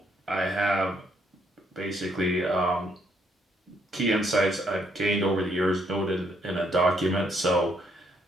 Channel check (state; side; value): normal; both; correlation 0.72